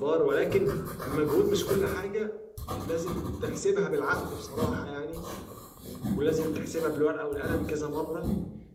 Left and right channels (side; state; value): both; identical; correlation 1.00